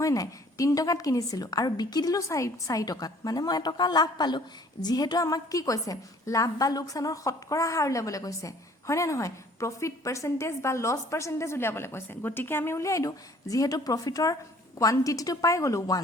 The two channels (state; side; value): normal; both; correlation 0.55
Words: নাই 3 টকাত কিনিছিলো আৰু বিকি দিলো 4 টকাত মানে মই এটকা লাভ পালো যেহেতু আমাক কি কৈছে লাভ বা লোকসানৰ শতকৰা হাৰ উলিয়াবলৈ কৈছে হয় না নহয় প্ৰফিট পাৰ্সেন্টেজ বা লস পাৰ্সেন্টেজ উলিয়াবলৈ কৈছে গতিকে আমি উলিয়াই দিও যেহেতু প্ৰফিটৰ কোৱান্টিটিটো পাই গলো